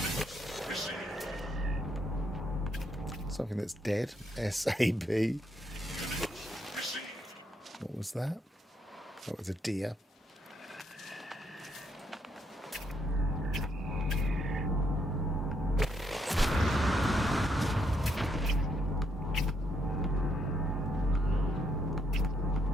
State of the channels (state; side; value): normal; both; correlation 0.75